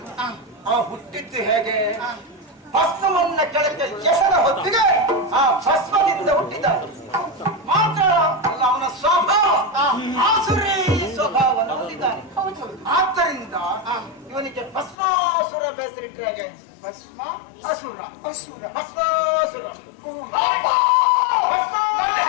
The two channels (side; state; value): right; drops out; at 15.0 s